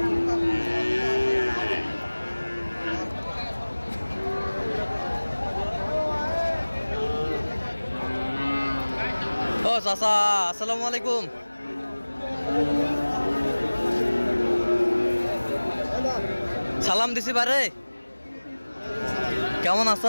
ও চাচা আসসালামু আলাইকুম, সালাম দিছি বারে, কেমন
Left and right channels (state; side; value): inverted; both; correlation -1.00